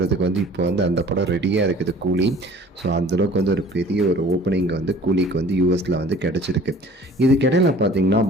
வந்து இப்போ வந்து அந்த படம் ரெடியாக இருக்குது கூலி. ஸோ அந்தளவுக்கு வந்து ஒரு பெரிய ஒரு ஓப்பனிங் வந்து கூலிக்கு வந்து யூஎஸில் வந்து கிடச்சிருக்கு. இதுக்கிடையில் பார்த்தீங்கன்னா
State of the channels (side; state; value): both; normal; correlation 0.49